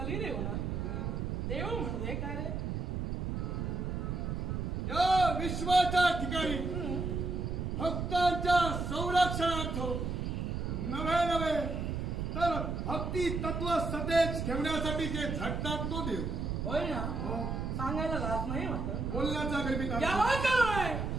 ना. देव म्हणजे काय रे? या विश्वाच्या ठिकाणी भक्तांच्या संरक्षणार्थ नवे नवे तर भक्ती तत्व सतेज ठेवण्यासाठी जे झटतात तो देव होय ना. सांगायला लाज नाही वाटत. बोलण्याचा गर्भित याला काय?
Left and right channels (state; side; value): noise; right; rumble, 2 dB below the sound